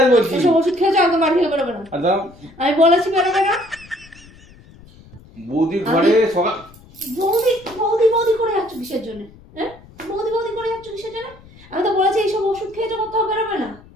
বলছি। ওসব ওষুধ খেয়েছো একদম বাড়ি থেকে বেরোবে না। আর দাঁড়াও, আমি বলেছি বেরোবে না। বৌদি ঘরে সকাল বৌদি বৌদি বৌদি করে যাচ্ছ কিসের জন্য? হ্যাঁ, বৌদি বৌদি করে যাচ্ছ কিসের জন্য? আমি তো বলেছি এইসব ওষুধ খেয়েছো, কোথাও বেরোবে না।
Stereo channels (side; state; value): left; noise; rumble, 23 dB below the sound